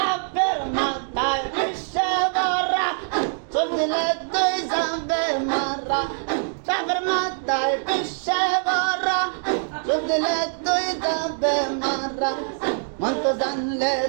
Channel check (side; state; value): left; silent; digital silence